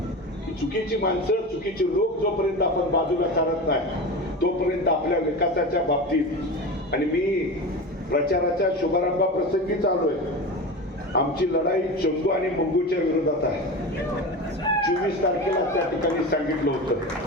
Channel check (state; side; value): normal; both; correlation 0.27